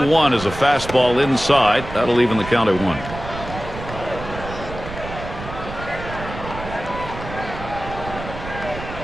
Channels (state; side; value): noise; right; rumble, 10 dB below the sound